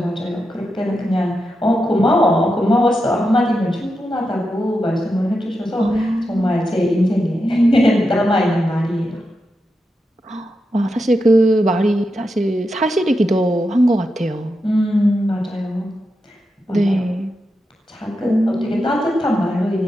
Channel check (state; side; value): normal; both; correlation 0.87